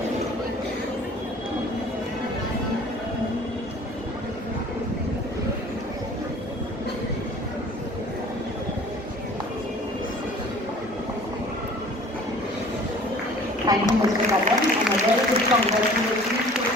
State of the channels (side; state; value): both; normal; correlation 0.48